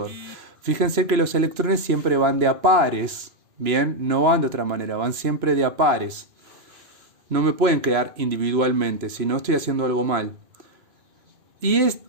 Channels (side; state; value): left; late; 3.0 ms